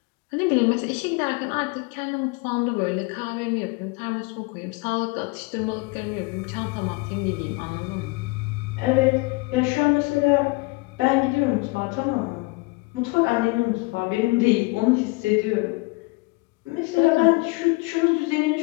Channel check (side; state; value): right; quieter; 26.2 dB